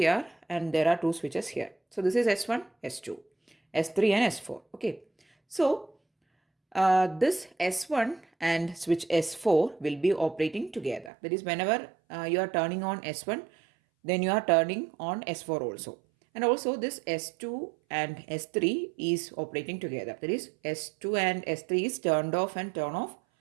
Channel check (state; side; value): drops out; left; at 11.1 s